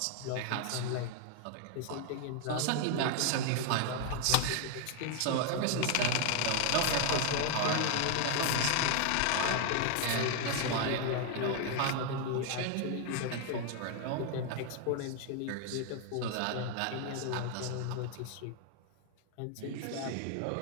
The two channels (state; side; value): different; both; correlation 0.01